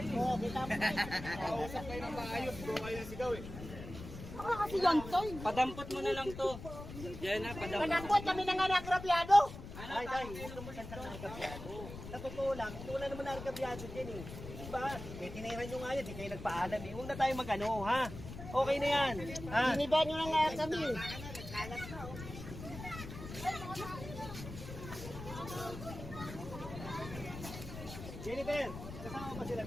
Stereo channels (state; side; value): noise; left; rumble, 11 dB below the sound